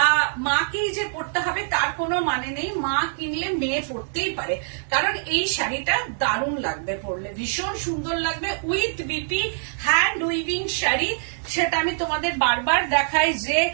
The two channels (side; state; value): left; silent; digital silence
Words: মাকেই যে পরতে হবে তার কোনো মানে নেই, মা কিনলে মেয়ে পরতেই পারে, কারণ এই শাড়িটা দারুণ লাগবে পরলে, ভীষণ সুন্দর লাগবে। With BP hand weaving sari, সেটা আমি তোমাদের বারবার দেখাই যে